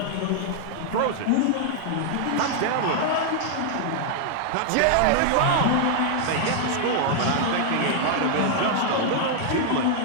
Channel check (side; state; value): both; different; correlation 0.00